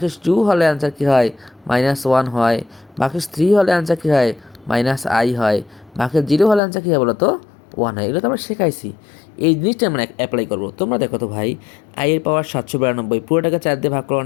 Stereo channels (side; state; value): right; drops out; at 6.6 s